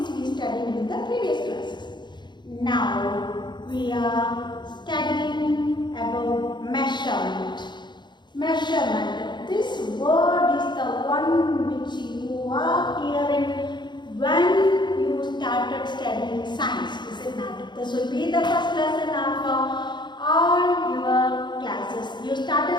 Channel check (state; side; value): late; right; 0.22 ms